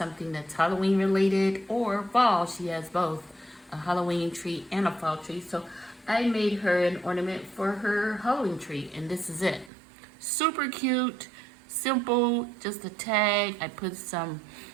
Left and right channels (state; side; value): drops out; left; at 9.7 s